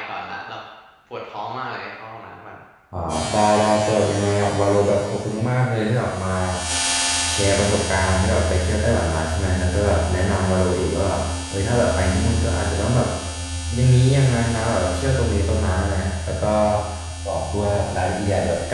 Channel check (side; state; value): both; identical; correlation 1.00